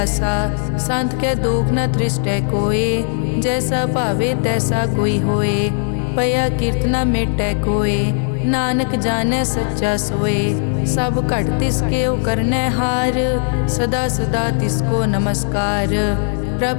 संत कै दोख न तृष्टै कोय, जैसा भावे तैसा कोई होए। पया कीर्तना मेटै कोय, नानक जानै सच्चा सोए। सब घट तिसके ओ करनै हार, सदा सदा तिसको नमस्कार।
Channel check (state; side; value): silent; right; digital silence